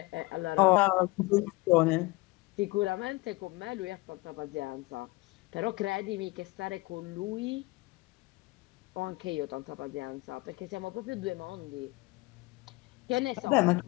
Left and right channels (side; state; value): right; quieter; 22.9 dB